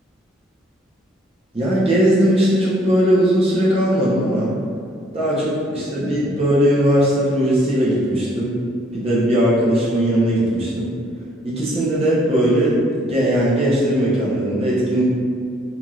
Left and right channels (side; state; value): both; normal; correlation 0.64